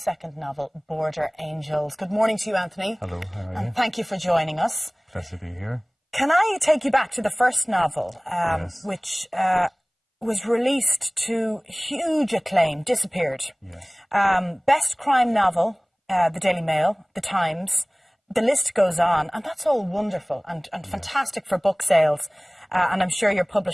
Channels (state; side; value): identical; both; correlation 1.00